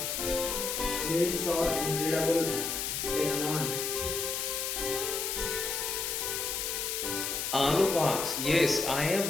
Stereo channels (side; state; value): left; noise; hiss, 2 dB below the sound